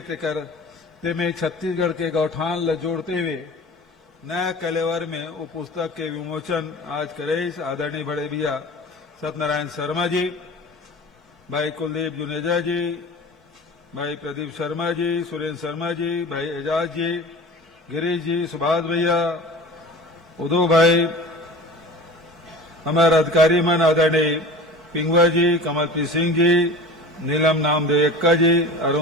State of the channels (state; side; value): normal; both; correlation 0.37